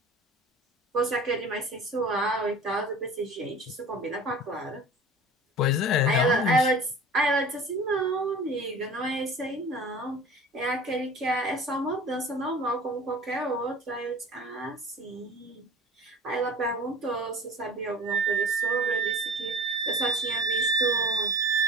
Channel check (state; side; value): normal; both; correlation 0.40